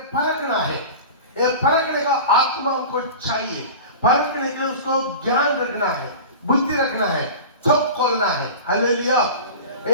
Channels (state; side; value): inverted; both; correlation -0.35